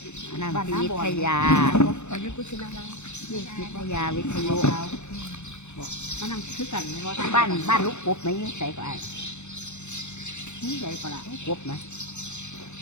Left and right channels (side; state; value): right; late; 0.83 ms